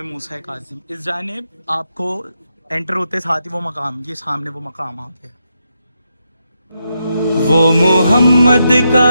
मूसा कासिम, इस जानिब आपको एंटर होते साथ ही वो मकाम, ये सामने वो मकाम आ गया। वो मोहम्मद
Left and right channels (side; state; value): both; inverted; correlation -0.83